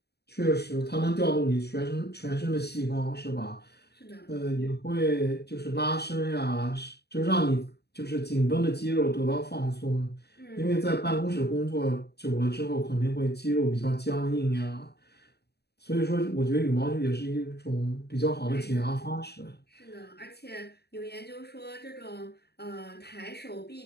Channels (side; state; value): right; late; 0.48 ms